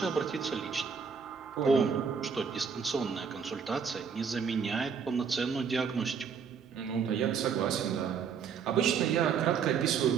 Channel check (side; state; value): left; quieter; 6.4 dB